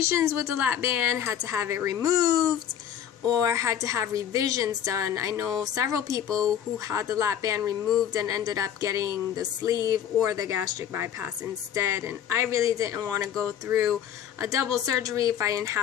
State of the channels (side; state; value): right; quieter; 9.6 dB